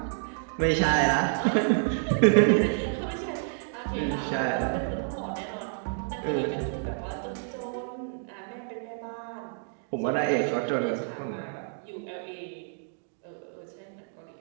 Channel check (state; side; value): silent; left; digital silence